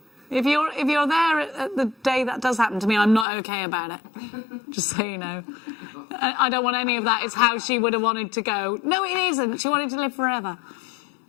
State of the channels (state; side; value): drops out; right; at 3.2 s